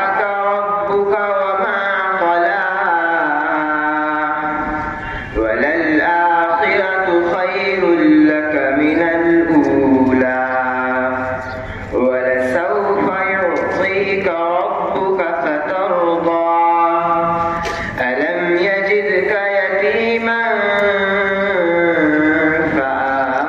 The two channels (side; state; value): both; identical; correlation 1.00